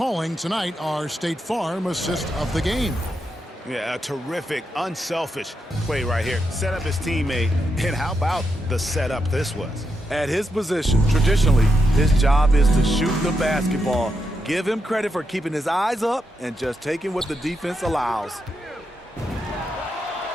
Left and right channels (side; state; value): both; normal; correlation 0.84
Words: tonight our State Farm assist of the game. Yeah, a terrific, unselfish play right here. Set up his teammate, and how about the setup this was? At his position, traditionally, his job is to shoot the basketball. Give him credit for keeping his eyes up and just taking what the defense allows.